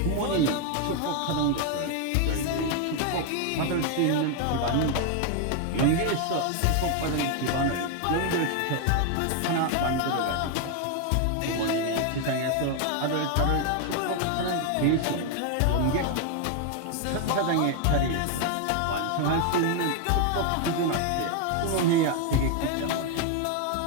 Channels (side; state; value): both; different; correlation 0.01